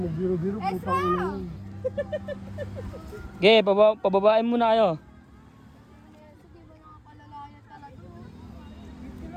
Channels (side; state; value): both; identical; correlation 1.00